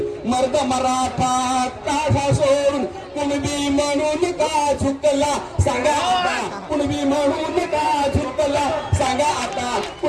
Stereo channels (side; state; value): both; identical; correlation 1.00